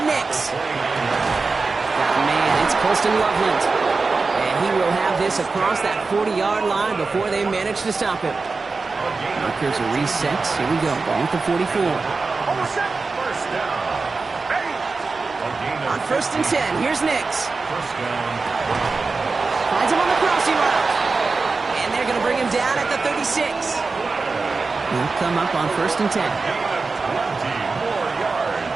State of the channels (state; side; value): quieter; left; 4.1 dB